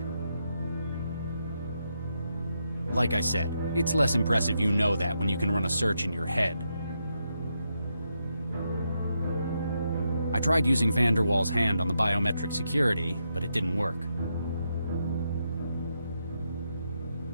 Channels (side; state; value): both; inverted; correlation -0.82